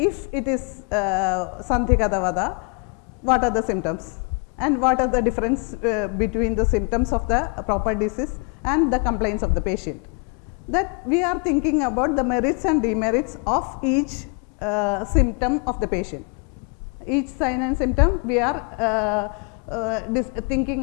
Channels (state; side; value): quieter; right; 33.1 dB